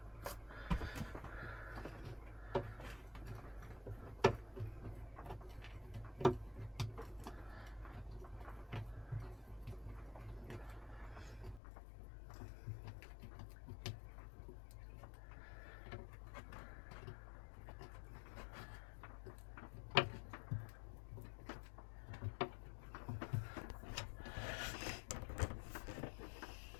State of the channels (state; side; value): drops out; right; at 11.6 s